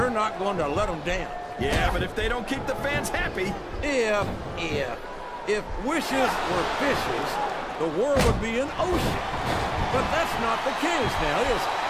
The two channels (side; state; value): both; identical; correlation 1.00